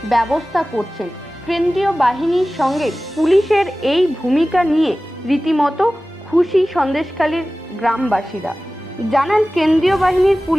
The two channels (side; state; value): both; normal; correlation 0.97